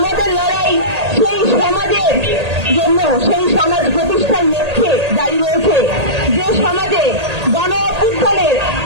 লড়াই সেই সমাজের জন্য, সেই সমাজ প্রতিষ্ঠার লক্ষ্যে জারি রয়েছে, যে সমাজে গণ অভ্যুত্থানের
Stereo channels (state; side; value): late; left; 1.8 ms